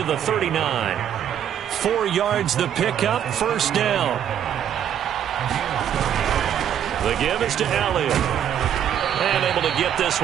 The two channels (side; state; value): left; quieter; 9.7 dB